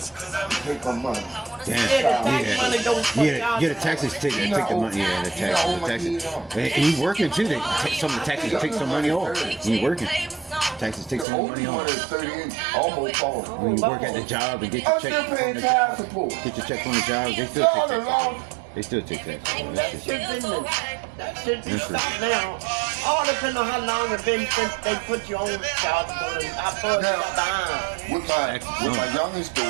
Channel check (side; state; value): left; drops out; at 11.2 s